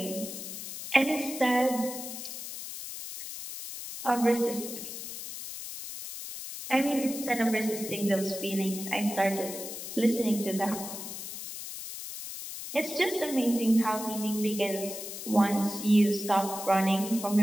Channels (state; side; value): noise; left; hiss, 9 dB below the sound